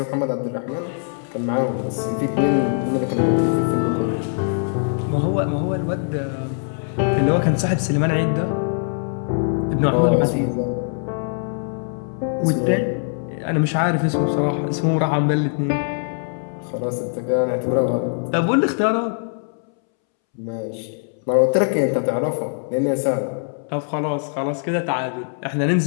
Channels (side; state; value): right; silent; 64 dB below the other